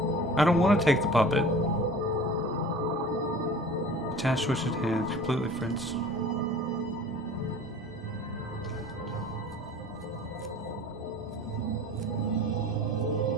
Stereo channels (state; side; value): normal; both; correlation 0.43